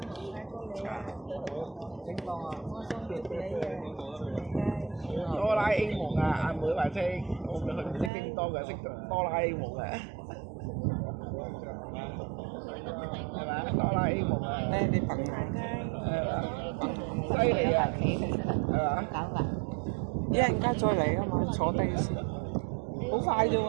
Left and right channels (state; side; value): drops out; left; at 8.1 s